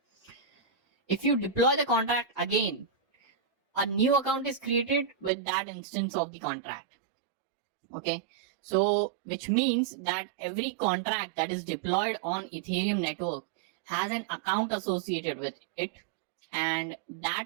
if you deploy the contract again, a new account is created with that instance of the contract. Okay, so which means that every contract that is deployed on Ethereum network has an account associated with it, and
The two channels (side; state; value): left; drops out; at 5.3 s